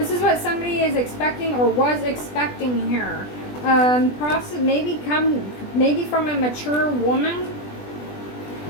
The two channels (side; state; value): right; late; 20 ms